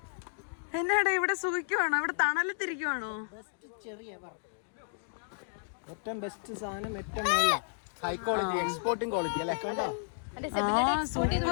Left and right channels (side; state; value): right; silent; digital silence